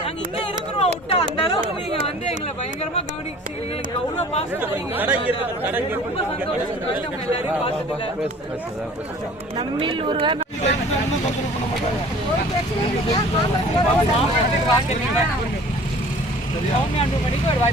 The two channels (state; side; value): normal; both; correlation 0.47